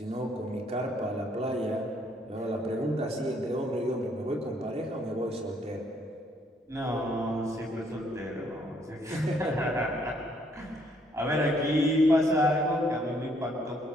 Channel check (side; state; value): both; normal; correlation 0.68